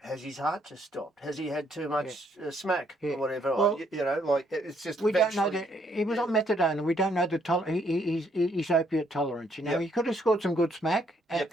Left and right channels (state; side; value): normal; both; correlation 0.69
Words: his heart just stopped? Has he had too much smack or whatever? Well, It's just. We don't know that he was on methadone, and we don't know his opiate tolerance. You know, he could have scored some good smack